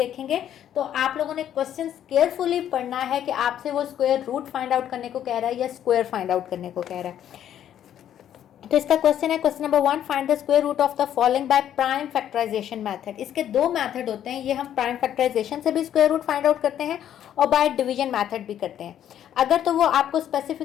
तो आप लोगों ने क्वेश्चन केयरफुली पढ़ना है कि आपसे वो स्क्वायर रूट फाइंड आउट करने को कह रहा है या स्क्वायर फाइंड आउट करने को कह रहा है. तो इसका क्वेश्चन है, question number 1, find the square root of the following by prime factorization method. इसके दो मेथड होते हैं, ये हम प्राइम फैक्टराइजेशन से भी स्क्वायर रूट फाइंड आउट करते हैं और बाय डिवीजन मेथड भी करते हैं. अगर तो वो आपको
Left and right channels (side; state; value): right; quieter; 10.5 dB